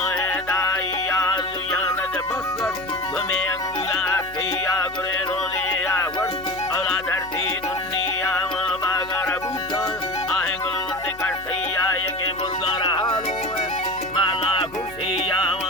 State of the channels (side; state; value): left; noise; hum, 20 dB below the sound